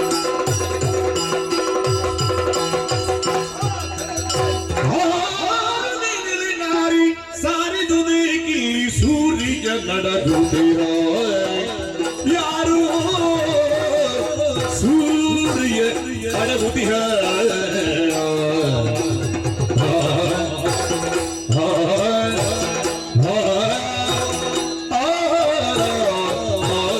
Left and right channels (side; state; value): both; identical; correlation 1.00